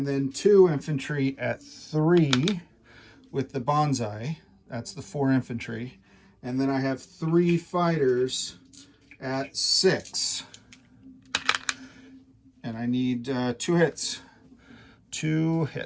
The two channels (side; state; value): both; identical; correlation 1.00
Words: then 2 infantry at 3 with the bonsai. That's the 4 infantry. And then I have 3 fighters at 6. And I need 2 hits. 2